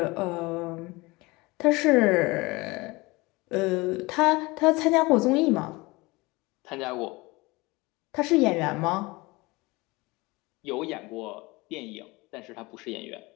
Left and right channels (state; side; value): quieter; right; 23.3 dB